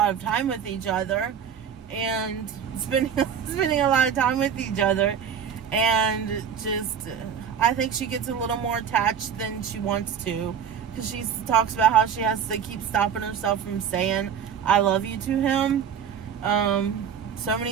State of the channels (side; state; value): left; quieter; 7.8 dB